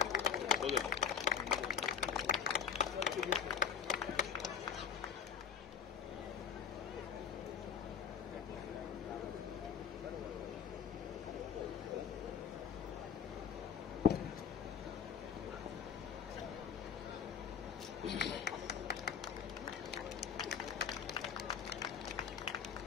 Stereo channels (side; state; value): right; quieter; 7.2 dB